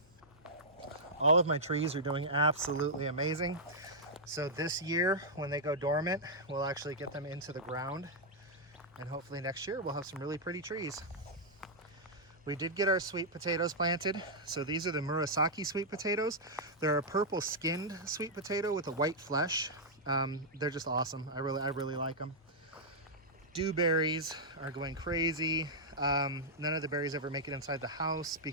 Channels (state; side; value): normal; both; correlation -0.07